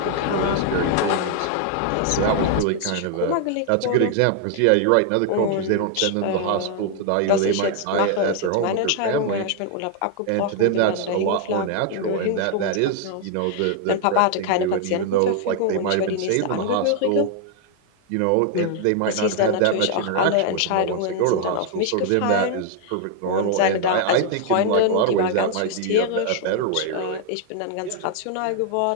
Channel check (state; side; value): different; both; correlation 0.00